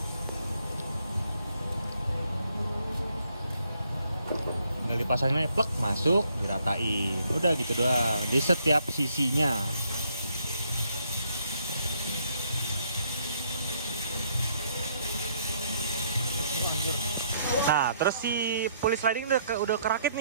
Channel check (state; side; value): inverted; both; correlation -0.70